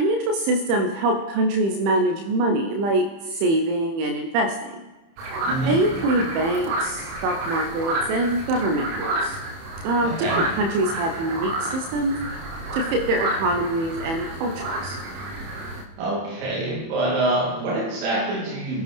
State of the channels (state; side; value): late; left; 30 ms